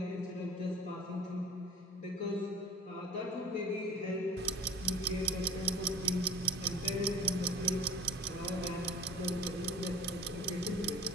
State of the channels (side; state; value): both; normal; correlation 0.41